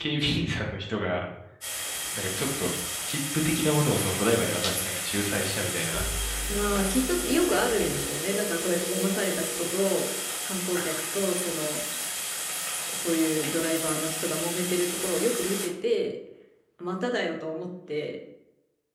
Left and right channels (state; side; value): identical; both; correlation 1.00